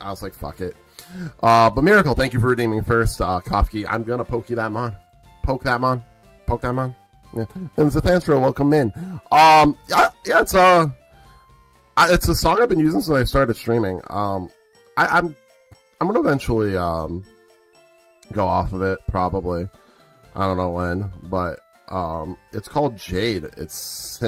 was like, fuck it. But Miracle, thank you for redeeming first. Kofke, I'm gonna poke you that mon. Poke that mon. Poke that mon. Yeah. And Zathantro, welcome in. It's a song I've been using since I started streaming. I'm gonna eventually go off of it, probably. I don't know when, but it's called Jade. It's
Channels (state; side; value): identical; both; correlation 1.00